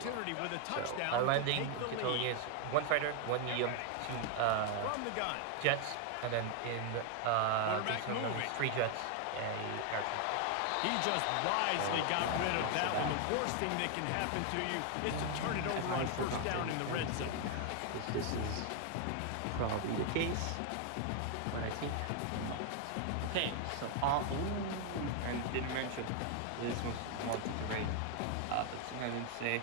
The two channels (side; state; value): both; different; correlation 0.00